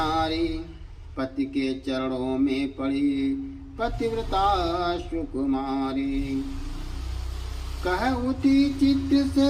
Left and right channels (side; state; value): both; identical; correlation 1.00